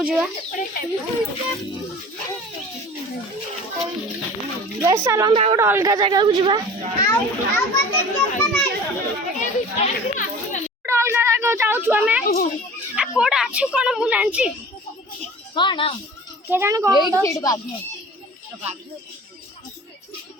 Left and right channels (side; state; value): both; normal; correlation 0.42